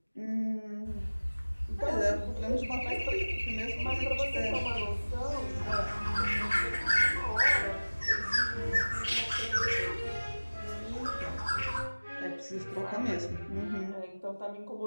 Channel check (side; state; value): both; inverted; correlation -1.00